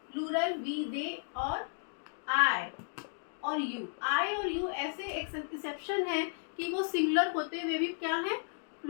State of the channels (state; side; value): silent; right; digital silence